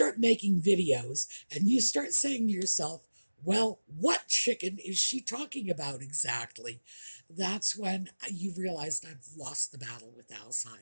making videos and you start saying to yourself, well, what chicken is she talking about exactly? That's when you've realized I've lost the battle with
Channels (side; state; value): both; inverted; correlation -1.00